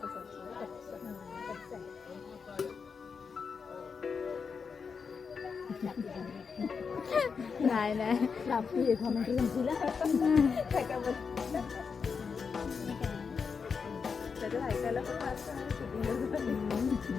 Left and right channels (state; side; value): quieter; right; 5.7 dB